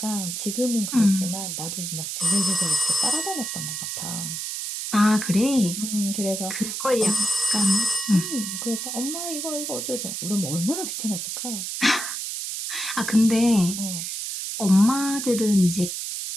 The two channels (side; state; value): right; noise; hiss, 4 dB below the sound